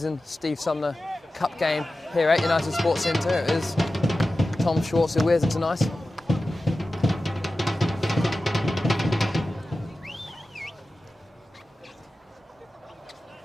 Steve Sumner Cup game here at United Sports Centre. It is Tom Schwartz who wears it tonight.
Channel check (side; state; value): both; normal; correlation 0.94